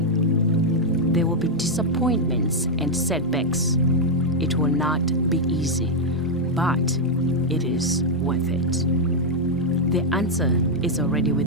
There will be disappointments and setbacks. It will not be easy, but it is worth it. The answer is already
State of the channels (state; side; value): normal; both; correlation -0.01